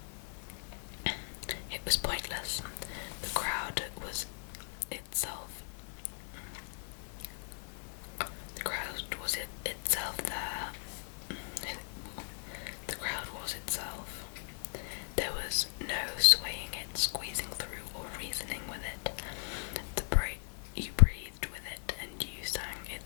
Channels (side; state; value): right; silent; digital silence